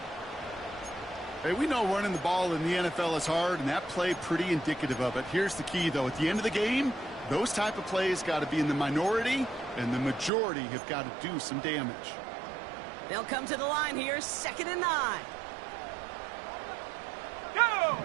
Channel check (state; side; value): drops out; left; at 10.3 s